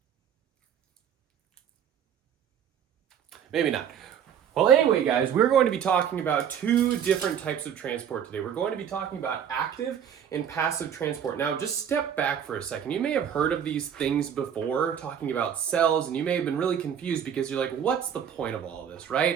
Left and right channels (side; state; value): left; quieter; 8.6 dB